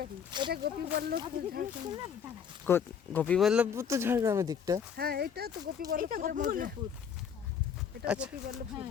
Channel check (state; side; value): quieter; right; 7.4 dB